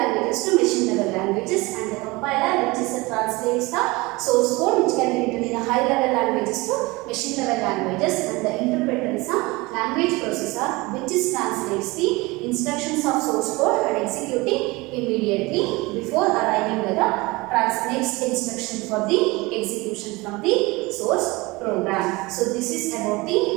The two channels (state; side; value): quieter; left; 23.1 dB